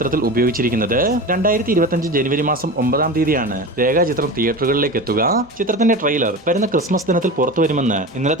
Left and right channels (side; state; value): both; normal; correlation 0.29